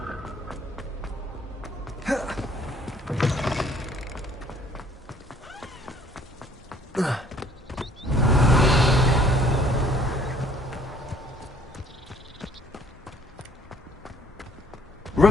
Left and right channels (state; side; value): normal; both; correlation 0.59